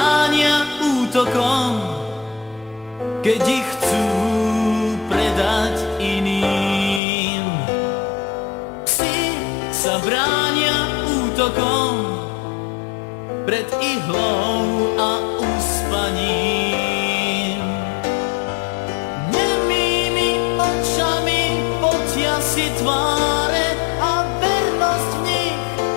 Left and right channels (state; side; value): drops out; right; at 7.0 s